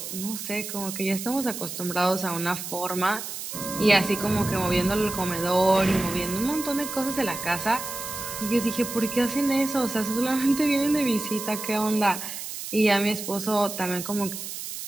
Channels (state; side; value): noise; right; hiss, 8 dB below the sound